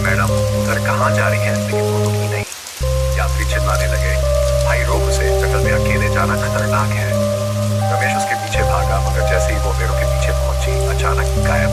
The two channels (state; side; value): identical; both; correlation 1.00